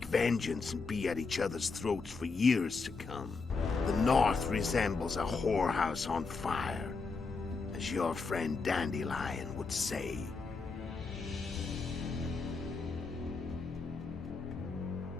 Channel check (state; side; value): quieter; right; 4.4 dB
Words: vengeance and be at each other's throats for years to come. The north resembles a whorehouse on fire, as your friend Dandelion would say.